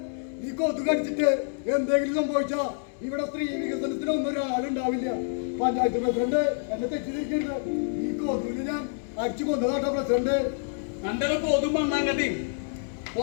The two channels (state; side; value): silent; right; digital silence